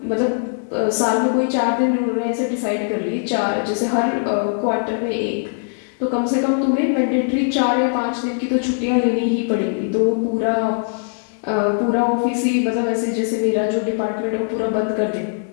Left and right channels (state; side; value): silent; right; 64 dB below the other